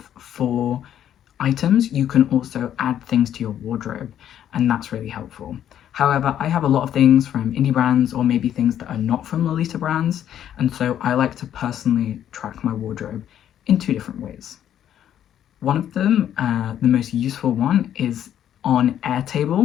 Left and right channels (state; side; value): quieter; right; 10.5 dB